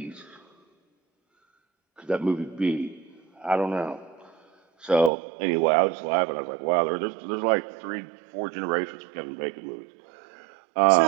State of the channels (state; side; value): drops out; left; at 5.1 s